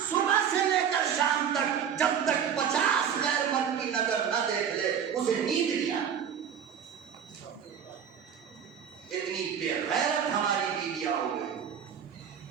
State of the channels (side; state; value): left; quieter; 8.1 dB